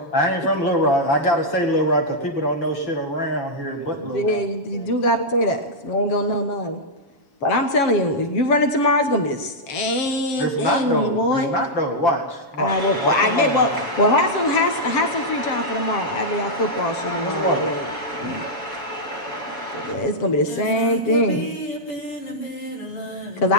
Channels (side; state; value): right; late; 7.2 ms